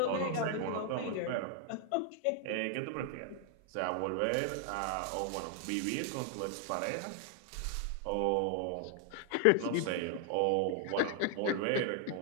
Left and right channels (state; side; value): different; both; correlation 0.00